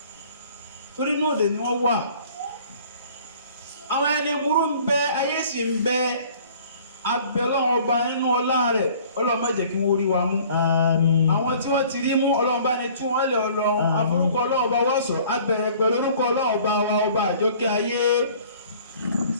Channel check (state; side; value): inverted; both; correlation -0.52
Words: torí inú òdè ni wọ́n wà àwọn ẹni burú ń bẹ ayé sì ń bẹ abẹ Ọlọ́run ọba nínú ọlá rẹ̀ Ọlọ́run má jẹ́ kí wọ́n rí wa mú àmín àwọn tí wọ́n ti rí mú Ọlọ́run bá ní tú wọ́n lẹ̀ Ọlọ́run àforúkọ Ọlọ́run ọba wá sọ abẹ̀rẹ̀ pẹ̀lú orúkọ Ọlọ́run ọba wa ọba àjọkẹ́ ayé